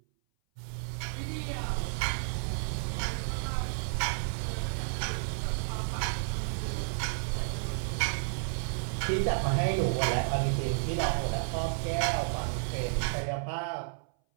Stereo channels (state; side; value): silent; left; 57 dB below the other